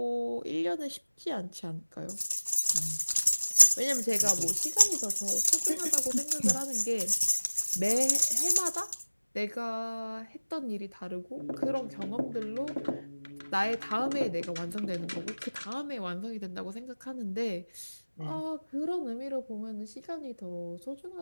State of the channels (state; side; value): inverted; both; correlation -1.00